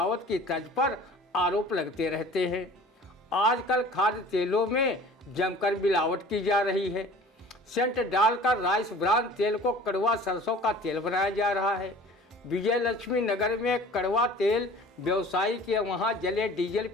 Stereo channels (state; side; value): normal; both; correlation 0.45